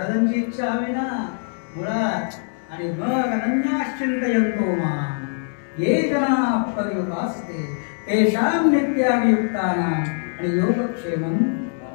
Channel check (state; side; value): silent; right; 64 dB below the other